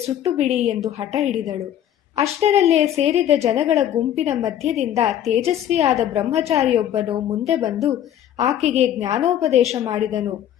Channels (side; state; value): right; quieter; 11.0 dB